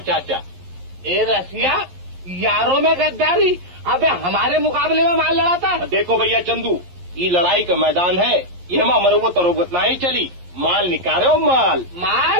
चाचा। ए रसिया, यारों में गद्दारी। अबे हमारे मुकाबले में माल लड़ाता। देखो भैया चंदू, ये लड़ाई का मैदान है, ये हम मरबो तरोबत ना ही चली। माल निकालो माल।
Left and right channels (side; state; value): left; late; 11 ms